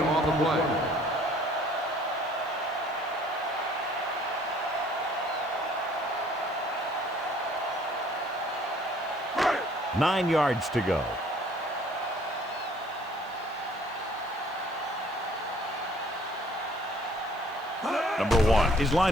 On the play. 9 yards to go. Number 1 is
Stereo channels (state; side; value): noise; right; hiss, 29 dB below the sound